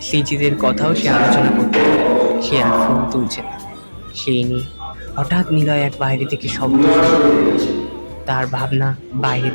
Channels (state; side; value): inverted; both; correlation -1.00